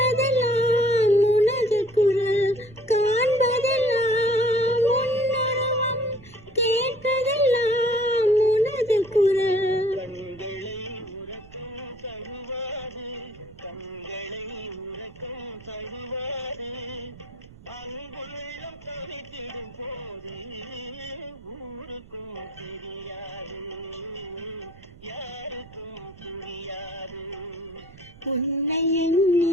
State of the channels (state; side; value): noise; right; rumble, 21 dB below the sound